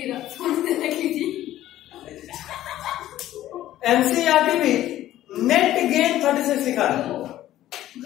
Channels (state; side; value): quieter; right; 13.7 dB